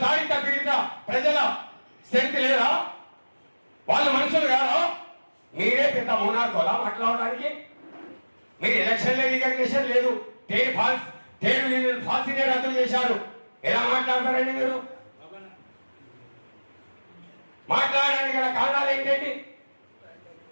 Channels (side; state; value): both; inverted; correlation -1.00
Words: తాడిత పీడిత ప్రజల శక్తి లేదా? వాళ్ళు మనుషులు కాదా? మీరే పెద్ద మోనార్కోలా మాట్లాడడానికి? మీరు ఎలక్షన్ రికగ్నిషన్ లేదు, ట్రేడ్ యూనియన్ ఫాల్సీనే రద్దు చేశారు. ఎలా మాట్లాడతారండి మీరు? మాట్లాడడానికి గల కారణాలు ఏంటండి?